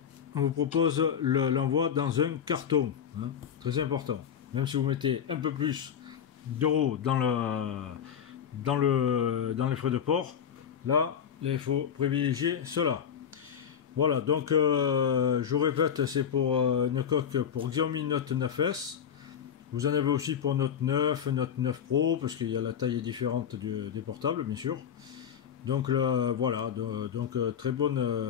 on vous propose l'envoi dans un carton. Hein, très important. Même si vous mettez un peu plus d'euros dans les frais de port, là, il faut privilégier cela. Voilà, donc je répète, c'est pour une coque pour Xiaomi Note 9S. Vous en avez aussi pour Note 9, Note 9 Pro, parce qu'il y a la taille différente des portables, bien sûr. Donc là, voilà, donc très bon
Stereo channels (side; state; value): right; quieter; 8.1 dB